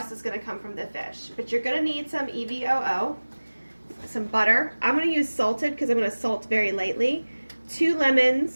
is going to come from the fish, but you're going to need some EVOO, some butter. I'm going to use salted because I'm going to salt very lightly. 2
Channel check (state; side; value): inverted; both; correlation -1.00